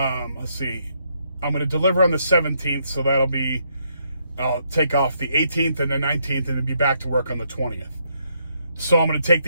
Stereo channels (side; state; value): both; inverted; correlation -0.74